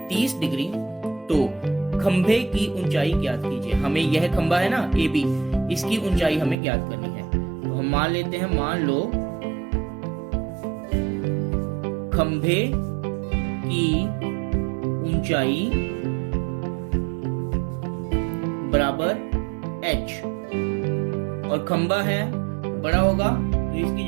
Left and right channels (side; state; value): left; drops out; at 6.6 s